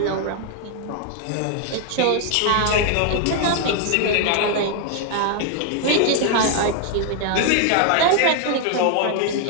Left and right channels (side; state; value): both; different; correlation 0.00